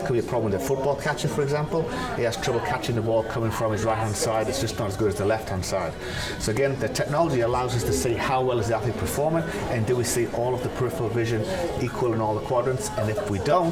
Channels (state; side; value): identical; both; correlation 1.00